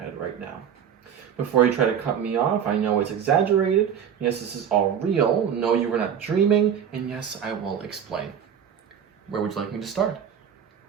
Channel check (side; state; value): left; quieter; 8.4 dB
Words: right now. Before you try to cut me off, I know it's exaggerated. Yes, this is all real. No, you were not dreaming. And yes, I will explain. Where would you like me to start?